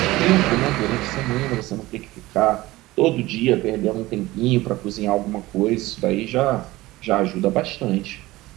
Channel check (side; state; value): left; quieter; 18.6 dB